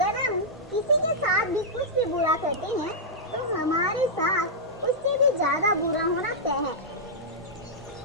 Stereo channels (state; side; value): normal; both; correlation -0.09